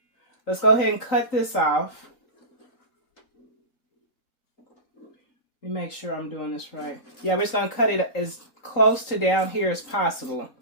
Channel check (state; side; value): late; right; 3.8 ms